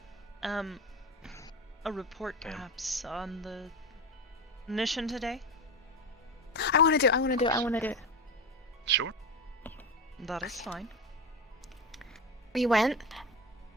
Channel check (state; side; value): normal; both; correlation 0.21